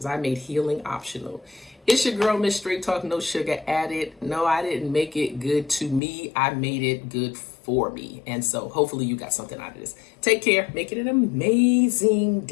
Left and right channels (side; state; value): right; drops out; at 6.0 s